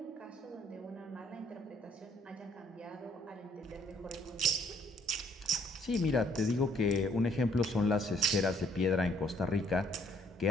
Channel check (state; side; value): normal; both; correlation 0.64